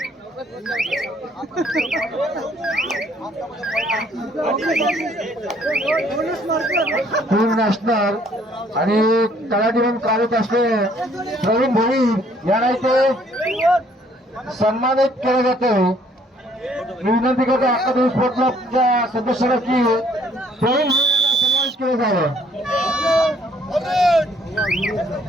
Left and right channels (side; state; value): both; normal; correlation 0.63